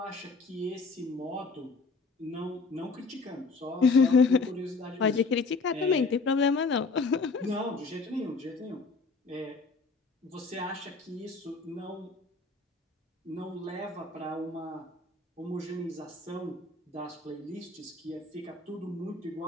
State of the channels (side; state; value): right; quieter; 4.0 dB